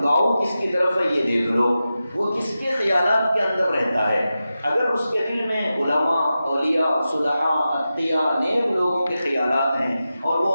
کس کی طرف ہے یہ دیکھ لو، وہ کس کے خیالات کے اندر رہتا ہے۔ اگر اس کے دل میں علماء، اولیاء، صلحاء، اتقیاء، نیک لوگوں کے خیالات ہیں اور وہ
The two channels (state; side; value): inverted; both; correlation -0.92